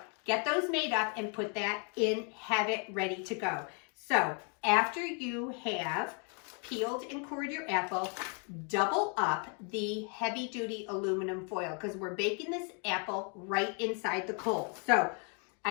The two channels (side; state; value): right; quieter; 38.8 dB